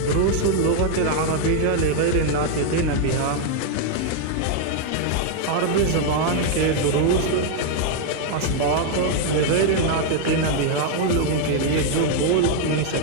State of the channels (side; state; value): both; different; correlation 0.00